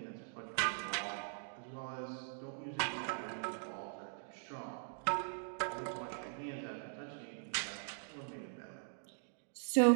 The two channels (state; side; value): silent; left; digital silence